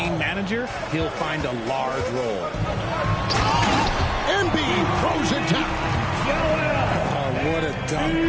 manager, he'll find a large role. Embiid throws it down. Oh, what a dunk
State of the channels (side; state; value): both; identical; correlation 1.00